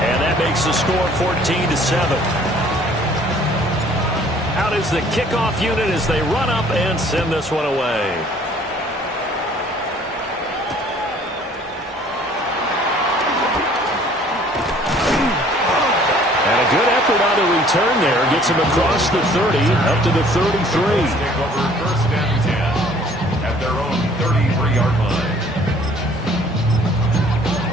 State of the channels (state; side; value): normal; both; correlation 0.56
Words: And that makes the score 14-7. Out is the kickoff unit as they run up and send this one away. And a good effort on the return there. Gets him across the 30, up to the 33. Take over 1st and 10 at their own 33-yard line.